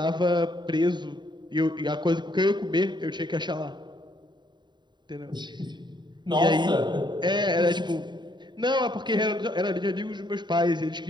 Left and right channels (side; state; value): left; late; 0.22 ms